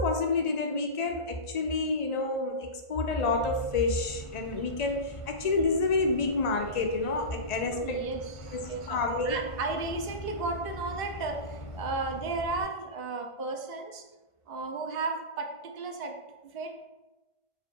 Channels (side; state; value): right; late; 1.5 ms